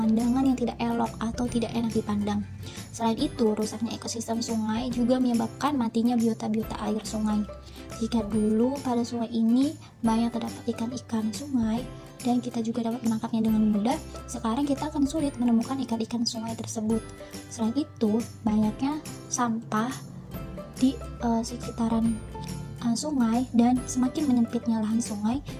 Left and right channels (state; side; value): identical; both; correlation 1.00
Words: yang tidak elok atau tidak enak dipandang. Selain itu, rusaknya ekosistem sungai juga menyebabkan matinya biota-biota air sungai. Jika dulu pada sungai ini banyak terdapat ikan-ikan sungai, dan kita juga dapat menangkapnya dengan mudah, sekarang kita akan sulit menemukan ikan-ikan sungai tersebut. Selain itu, banyaknya sampah di sekitaran sungai dan semakin menyempitnya lahan sungai